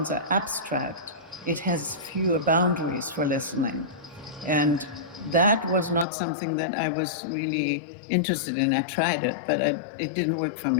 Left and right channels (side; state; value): right; drops out; at 6.1 s